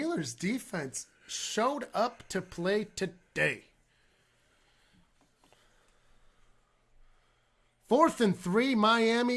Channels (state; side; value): identical; both; correlation 1.00